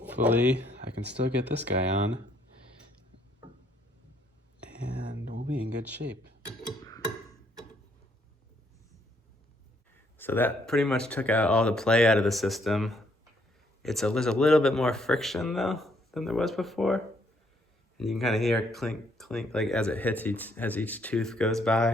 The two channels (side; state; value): both; normal; correlation 0.69